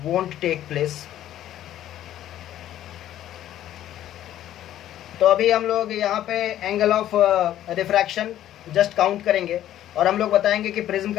won't take place. तो अभी हम लोग यहाँ पे angle of refraction just count करेंगे, और हम लोग बताएंगे कि प्रिज्म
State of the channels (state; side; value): quieter; right; 12.3 dB